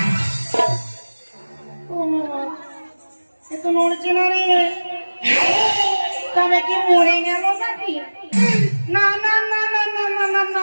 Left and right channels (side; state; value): both; inverted; correlation -1.00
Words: এ তো নড়ছে না রে তবে কি মরে গেল নাকি না না না না না না না না